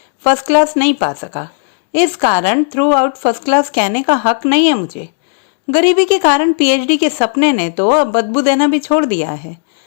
फर्स्ट क्लास नहीं पा सका। इस कारण थ्रू आउट फर्स्ट क्लास कहने का हक नहीं है मुझे। गरीबी के कारण पीएचडी के सपने ने तो अब बदबू देना भी छोड़ दिया है।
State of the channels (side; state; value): right; silent; digital silence